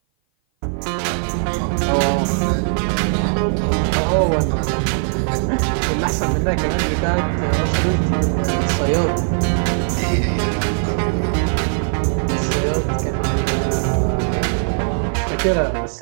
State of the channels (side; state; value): left; silent; 56 dB below the other